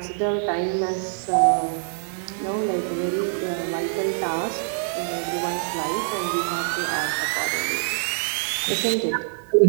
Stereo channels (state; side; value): silent; left; digital silence